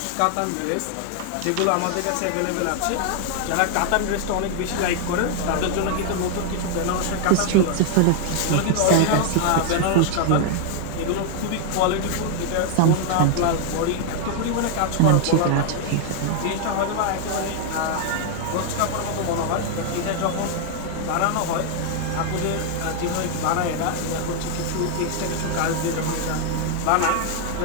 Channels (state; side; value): different; both; correlation 0.00